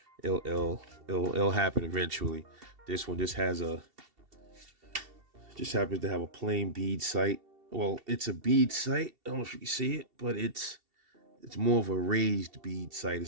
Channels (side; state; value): left; late; 2.7 ms